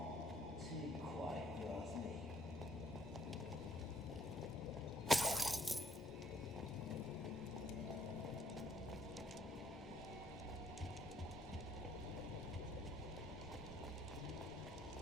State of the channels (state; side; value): normal; both; correlation 0.65